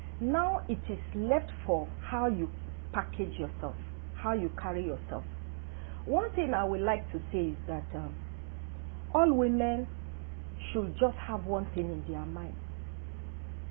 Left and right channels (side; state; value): left; silent; 54 dB below the other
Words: Now it is left for how you package yourself, how you carry yourself. One thing I would like to say is that all women should just have one thing in their mind.